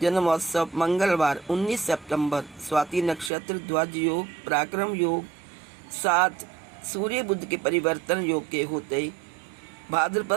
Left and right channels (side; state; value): left; drops out; at 3.3 s